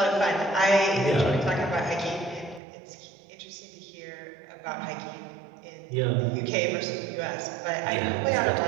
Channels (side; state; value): left; drops out; at 2.6 s